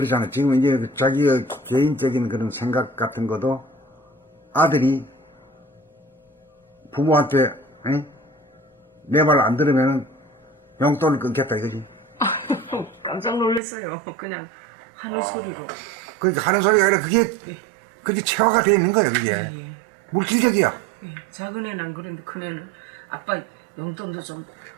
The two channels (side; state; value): left; drops out; at 13.6 s